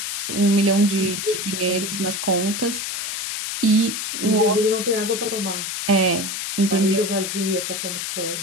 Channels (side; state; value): left; noise; hiss, 4 dB below the sound